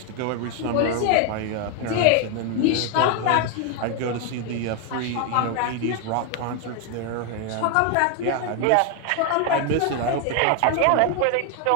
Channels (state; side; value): different; both; correlation 0.01